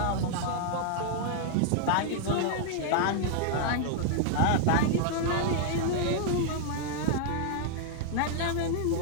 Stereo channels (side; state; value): both; different; correlation -0.01